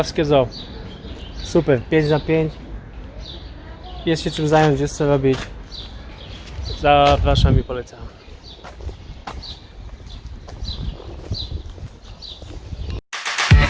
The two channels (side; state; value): both; identical; correlation 1.00